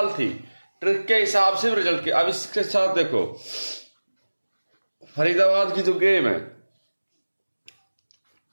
थी, ट्रिक के हिसाब से रिजल्ट के। अब इसके साथ देखो, फरीदाबाद की जो गेम है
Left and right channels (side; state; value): both; inverted; correlation -1.00